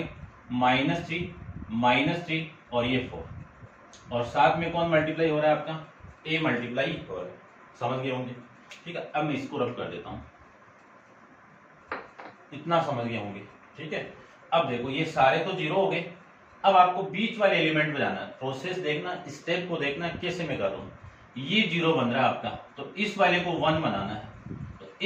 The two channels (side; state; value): both; identical; correlation 1.00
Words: -3 और ये 4, और साथ में कौन मल्टीप्लाई हो रहा है आपका, A मल्टीप्लाई हो रहा है, समझ गए होंगे, ठीक है। अब मैं इसको रब कर देता हूं, इतना समझ गए होंगे, ठीक है। अब देखो ये सारे तो 0 हो गए, अब आपको बीच वाले एलिमेंट बजाना है, प्रोसेस देखना, स्टेप को देखना कैसे मैं कर रहा हूं। ये 0 बन रहा है आपका, तो इस वाले को 1 बनाना है, तो